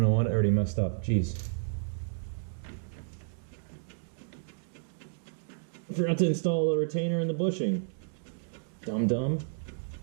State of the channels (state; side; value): silent; left; digital silence